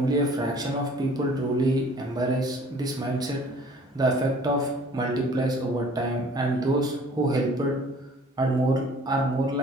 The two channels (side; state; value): both; normal; correlation 0.52